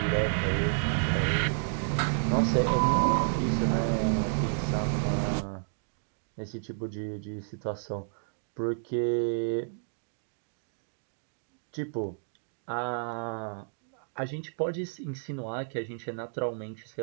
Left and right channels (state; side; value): silent; left; digital silence